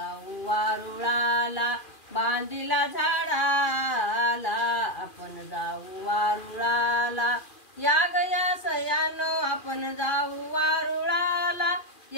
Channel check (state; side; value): late; right; 2.4 ms